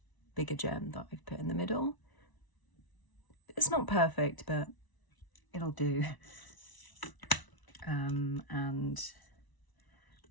bigger gem that I've put in the middle. It's not perfect, but it'll do. And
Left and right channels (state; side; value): late; right; 1.0 ms